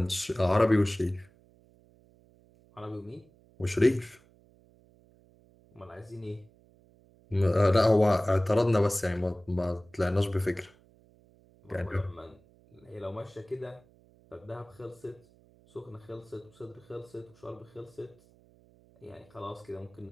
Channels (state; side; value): noise; right; hum, 29 dB below the sound